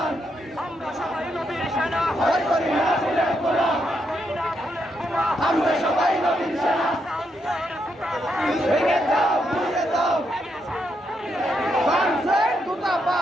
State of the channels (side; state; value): both; normal; correlation 0.80